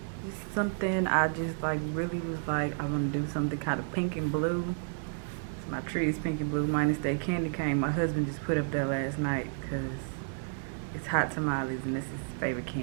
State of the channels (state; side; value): silent; left; digital silence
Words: Just something I just like really was like, I'm gonna do something kind of pink and blue. So my tree is pink and blue minus that candy cane my husband just put up there last night because it's hot tamales and this is his favorite